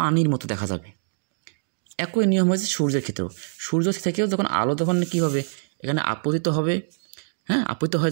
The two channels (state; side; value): silent; left; digital silence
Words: মতো দেখা যাবে। একই নিয়ম হয়েছে সূর্যের ক্ষেত্রেও। সূর্য থেকেও যখন আলো যখন কী হবে? এখানে আপতিত হবে, হ্যাঁ, আপতিত হয়